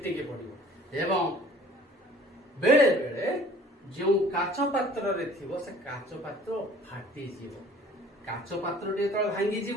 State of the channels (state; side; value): normal; both; correlation 0.51